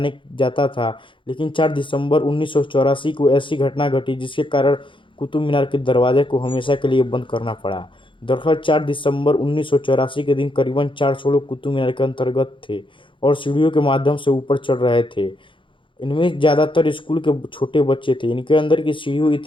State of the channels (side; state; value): right; late; 0.24 ms